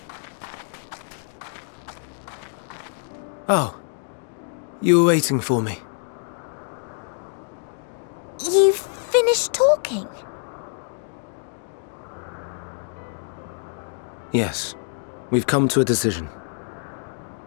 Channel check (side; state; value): right; silent; digital silence